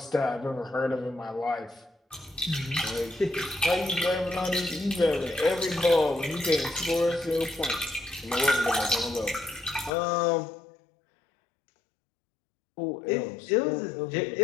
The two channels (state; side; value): drops out; right; at 9.9 s